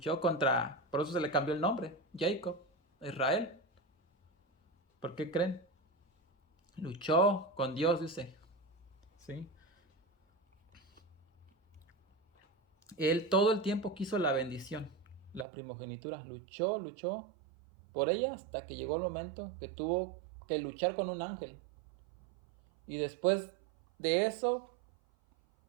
contra, por eso se le cambió el nombre, Jacob, Israel. ¿Por qué creen? Luchó con Dios, dice. ¿Sí? Él todo el tiempo quiso la bendición, la primogenitura. Luchó por ella hasta que llegó el momento que tuvo que luchar con un ángel. Y después de eso,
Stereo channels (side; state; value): left; drops out; at 15.5 s